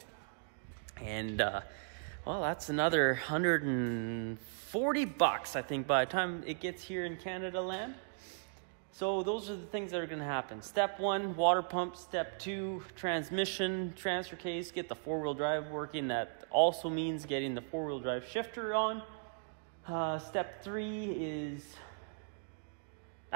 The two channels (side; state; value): left; silent; digital silence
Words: And well, that's another 140 bucks, I think, by the time it gets here in Canada land. So those are the things that are going to happen. Step 1, water pump. Step 2, transmission, transfer case, get the 4-wheel drive working. That also means getting the 4-wheel drive shifter on. Step 3 is